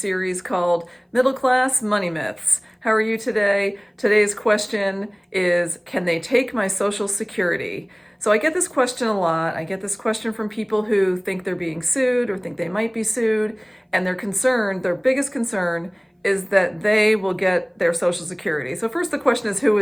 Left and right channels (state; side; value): identical; both; correlation 1.00